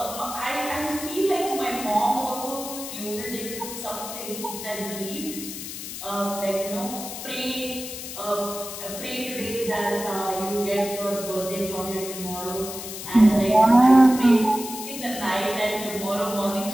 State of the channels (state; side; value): noise; left; hiss, 9 dB below the sound